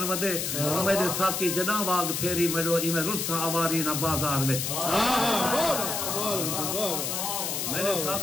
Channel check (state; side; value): noise; left; hiss, 1 dB below the sound